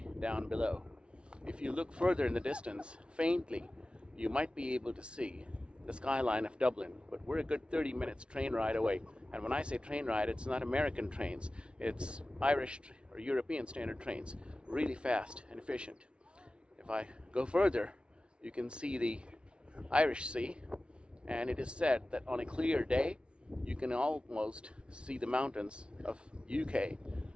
down below. If you look further in the distance, faintly, you might be able to see the skyline of Dublin, but we're a good 30 minutes train ride away. And when I say train ride, it's not American trains, it's Irish or European standard trains, really fast and efficient. If I go further, you can see the Irish Sea, and it is said that on a clear day, you can almost see the mountains of UK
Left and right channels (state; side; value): late; left; 0.058 ms